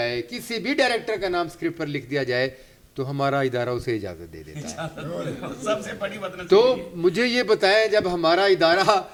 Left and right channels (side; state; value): both; identical; correlation 1.00